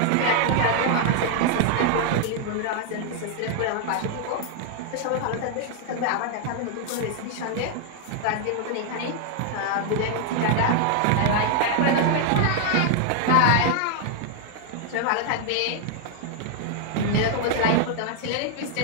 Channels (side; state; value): both; different; correlation 0.00